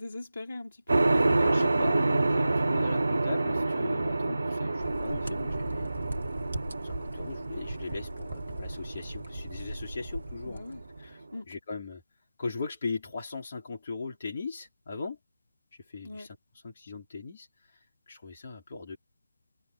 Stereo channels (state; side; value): inverted; both; correlation -0.95